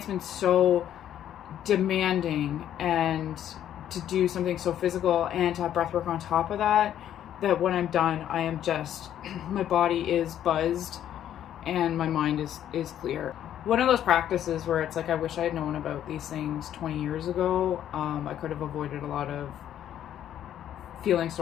been so demanding, and to do something so physical and to have breath work on top of that, that when I'm done, I am just, my body is buzzed and my mind is clear. One of those practices where it's like, I wish I had known about these things 20 years ago. I could have avoided a lot of feeling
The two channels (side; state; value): right; quieter; 10.8 dB